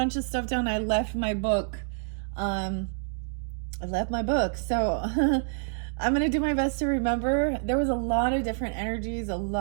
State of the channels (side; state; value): left; silent; digital silence